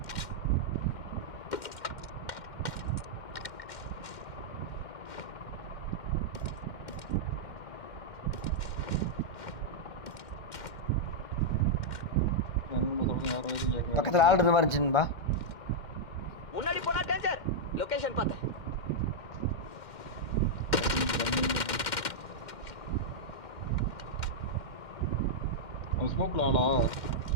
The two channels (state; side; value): late; right; 2.1 ms